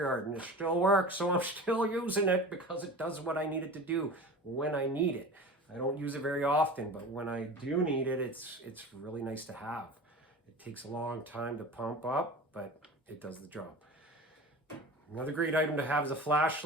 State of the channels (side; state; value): both; normal; correlation 0.35